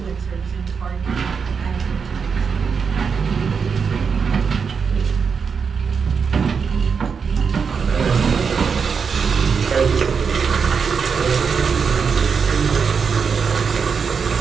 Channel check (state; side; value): quieter; left; 5.9 dB